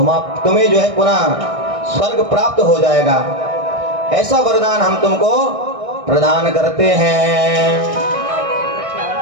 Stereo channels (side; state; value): left; late; 1.6 ms